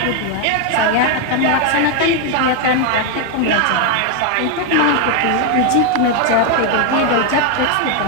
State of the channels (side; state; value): both; different; correlation 0.01